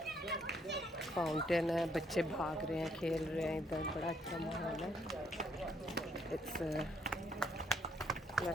फाउंटेन है, बच्चे भाग रहे हैं, खेल रहे हैं इधर, बड़ा अच्छा माहौल है। इट्स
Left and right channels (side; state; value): both; normal; correlation 0.70